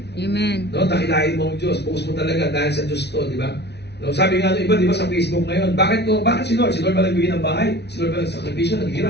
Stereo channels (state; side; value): late; right; 0.49 ms